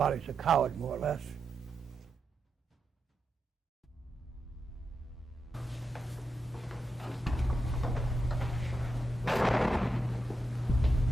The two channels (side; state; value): both; normal; correlation 0.86